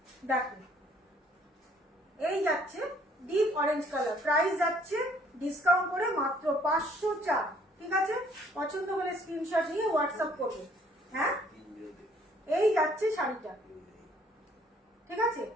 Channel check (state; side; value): normal; both; correlation 0.61